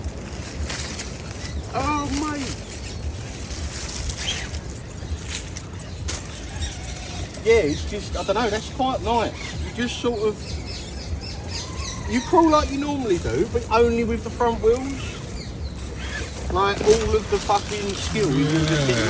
Oh mate. Yeah, it's just, I don't know, that's quite nice. You just sort of, you crawl like you normally do, but only with the front wheels. Like all of the fucking skill you can just get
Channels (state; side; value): identical; both; correlation 1.00